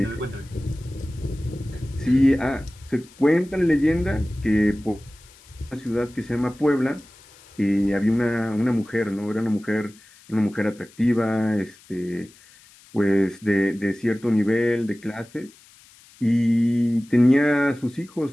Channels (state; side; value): noise; left; hiss, 26 dB below the sound